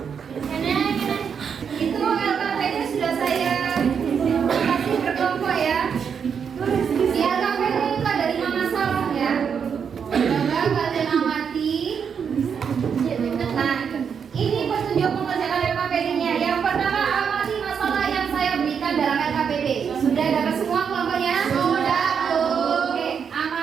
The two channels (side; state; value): left; quieter; 6.9 dB